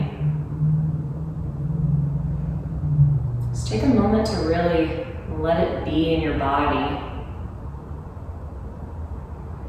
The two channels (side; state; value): both; identical; correlation 1.00